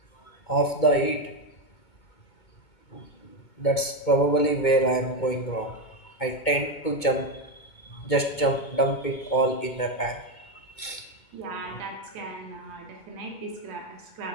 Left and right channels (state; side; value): late; right; 2.2 ms